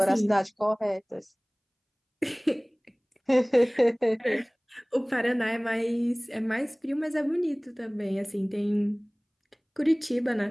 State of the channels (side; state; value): both; identical; correlation 1.00